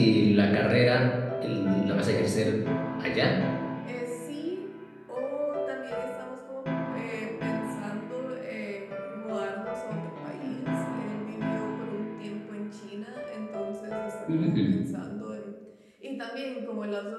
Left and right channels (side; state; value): both; identical; correlation 1.00